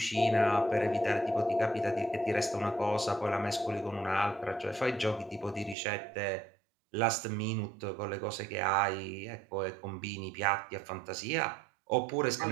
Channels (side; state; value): left; drops out; at 5.8 s